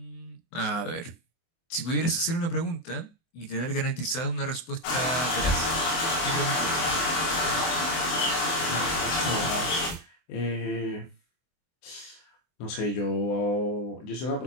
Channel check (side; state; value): right; late; 24 ms